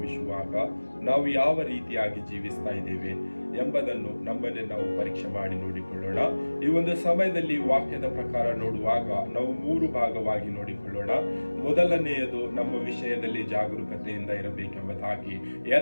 ನಾವು ಯಾವ ರೀತಿಯಾಗಿ ಜೀವಿಸ್ತಾ ಇದ್ದೇವೆ ಎಂಬುದನ್ನು ನಮ್ಮನ್ನೇ ನಾವು ಪರೀಕ್ಷೆ ಮಾಡಿ ನೋಡಿಕೊಳ್ಳೋಣ. ಈ ಒಂದು ಸಮಯದಲ್ಲಿ ವಾಕ್ಯದ ಪ್ರಕಾರ ನೋಡುವಾಗ ನಾವು 3 ಭಾಗವಾಗಿ ನೋಡಿಕೊಳ್ಳೋಣ. ಮೊದಲನೆಯದು ನಮ್ಮ ವಿಷಯದಲ್ಲಿ ಜಾಗರೂಕತೆಯಿಂದ ಇರಬೇಕೆಂಬುದಾಗಿ,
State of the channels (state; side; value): inverted; both; correlation -1.00